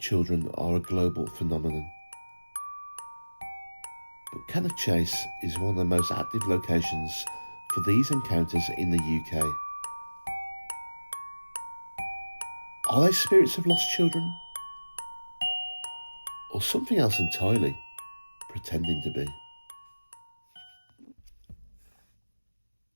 are a global phenomenon, but Cannock Chase is one of the most active locations for these encounters in the UK. Are they spirits of lost children? Or something else entirely, pretending to be?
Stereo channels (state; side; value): inverted; both; correlation -1.00